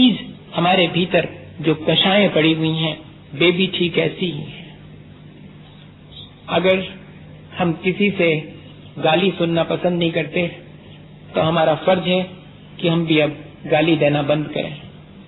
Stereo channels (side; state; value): both; identical; correlation 1.00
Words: हमारे भीतर जो कषायें पड़ी हुई हैं वे भी ठीक ऐसी ही हैं। अगर हम किसी से गाली सुनना पसंद नहीं करते तो हमारा फर्ज है कि हम भी अब गाली देना बंद करें।